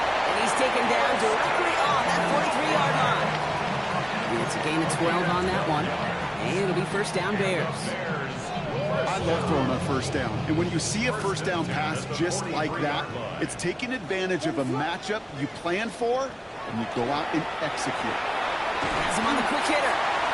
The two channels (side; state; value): both; identical; correlation 1.00